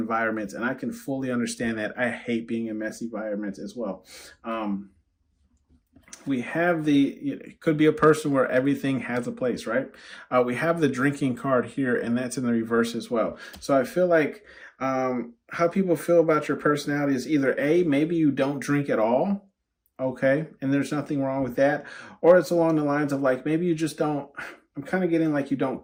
and I can fully understand that. I hate being in messy environments as well. We have it could be a person where everything has a place, right? We have the drinking card here, and that's in the reverse as well. So I feel like how people feel about your personality is either A, maybe you don't drink at all, okay, and there's nothing wrong with that, or it's along the lines of like, maybe you just don't, I'm kind of getting like you don't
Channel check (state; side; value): identical; both; correlation 1.00